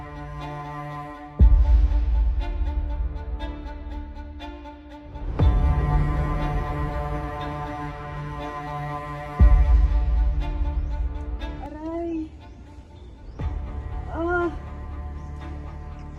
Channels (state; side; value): identical; both; correlation 1.00